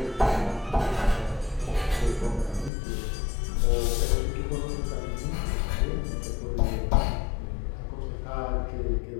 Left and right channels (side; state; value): right; drops out; at 2.7 s